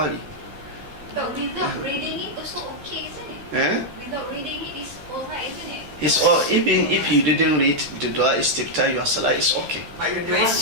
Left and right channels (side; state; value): left; late; 13 ms